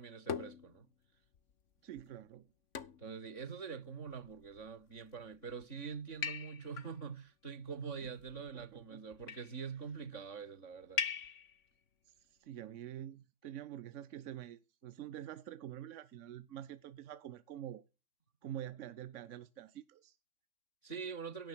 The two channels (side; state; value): right; late; 3.6 ms